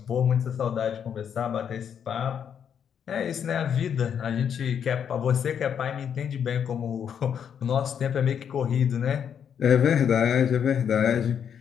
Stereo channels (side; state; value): right; quieter; 8.1 dB